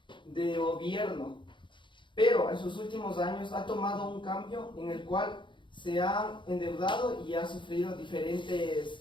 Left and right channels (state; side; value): late; right; 0.23 ms